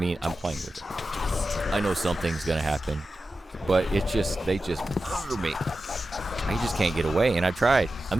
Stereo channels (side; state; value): both; normal; correlation 0.92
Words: I'm playing with it. I know something's going to happen. But it's just... They just murder me. I just can't get away. And I've tried.